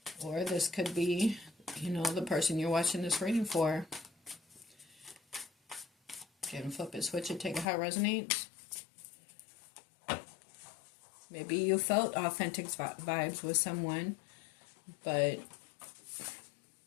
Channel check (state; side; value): drops out; right; at 7.7 s